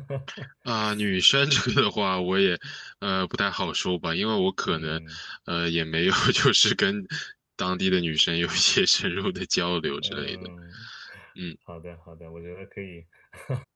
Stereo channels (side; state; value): both; identical; correlation 1.00